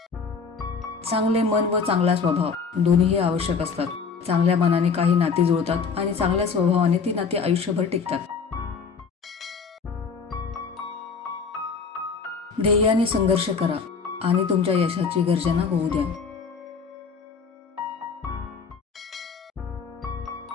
चांगले मन व चांगला स्वभाव दोन्हीही आवश्यक असतात. चांगल्या मनाने काही नाती जुळतात आणि चांगल्या स्वभावाने ती नाती आयुष्यभर टिकतात. ध्येयाने संघर्ष करा आणि तुमच्या यशाची गर्जना होऊ द्या.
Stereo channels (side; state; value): right; quieter; 5.5 dB